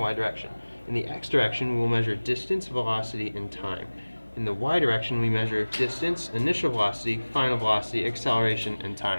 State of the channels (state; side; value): inverted; both; correlation -1.00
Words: y direction. In the x direction, we will measure distance, velocity, and time. In the y direction, we measure distance, initial velocity, final velocity, acceleration, and